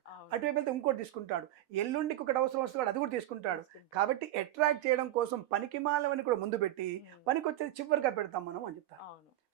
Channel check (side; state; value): left; quieter; 14.0 dB